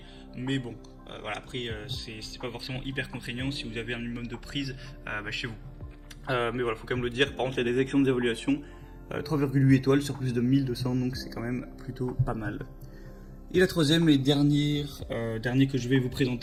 Mais bon, après c'est pas forcément hyper contraignant si vous avez un minimum de prise chez vous. Mais voilà, faut quand même le dire. Par contre, il y a des excellentes évaluations, 3,8 étoiles sur plus de 1200, donc c'est quand même plutôt pas mal. Et la troisième et dernier que je vais vous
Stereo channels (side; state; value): both; identical; correlation 1.00